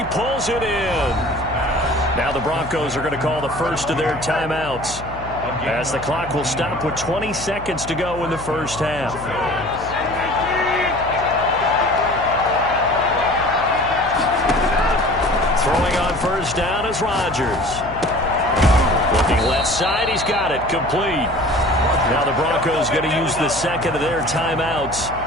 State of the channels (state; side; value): noise; left; hum, 13 dB below the sound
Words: pulls it in. Now the Broncos are going to call the first of their timeouts as the clock will stop with 20 seconds to go in the first half. Throwing on first down is Rodgers. Looking left side, he's got it, complete. Now the Broncos going to use the second of their timeouts